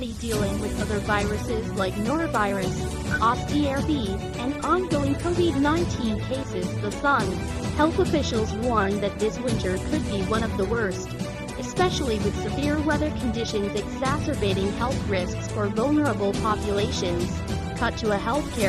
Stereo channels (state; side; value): identical; both; correlation 1.00